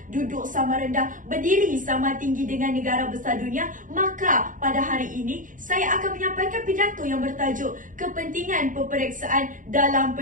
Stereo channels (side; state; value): left; late; 0.38 ms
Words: duduk sama rendah, berdiri sama tinggi dengan negara besar dunia, maka pada hari ini saya akan menyampaikan pidato yang bertajuk Kepentingan Peperiksaan dalam